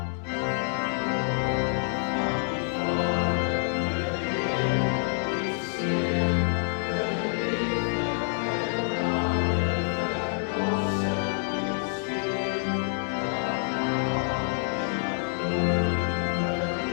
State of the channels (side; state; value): right; silent; 60 dB below the other